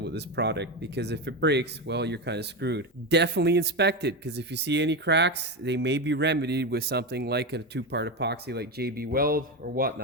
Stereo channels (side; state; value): both; normal; correlation 0.15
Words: with this product, because if it breaks, well, you're kind of screwed. Definitely inspect it, because if you see any cracks, they may be remedied with something like a 2-part epoxy like JB Weld or